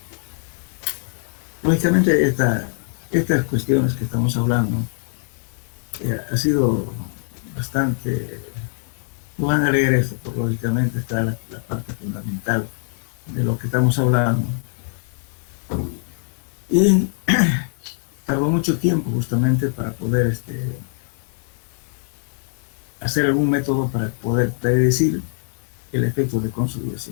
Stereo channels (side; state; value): right; silent; digital silence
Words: lógicamente estas cuestiones que estamos hablando ha sido bastante. Van a leer esto, porque lógicamente está la parte fundamental de lo que estamos hablando. Y tardó mucho tiempo justamente para poder hacer algún método para poder predecir el efecto de